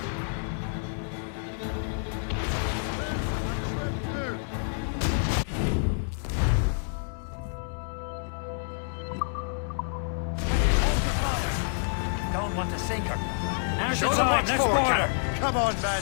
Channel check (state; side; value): silent; right; 59 dB below the other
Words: Loose on trip 2! Hold the fire. Don't want to sink her. Now's Show the them time, what's let's for, board Cap. her. Come on,